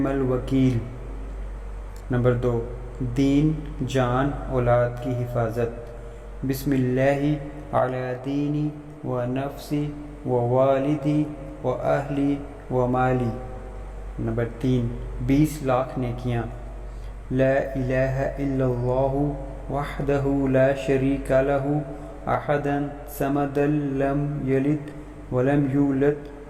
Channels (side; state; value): both; identical; correlation 1.00